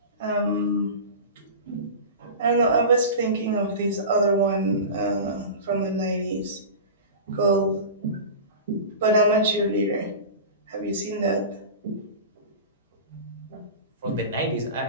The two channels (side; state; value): both; inverted; correlation -0.30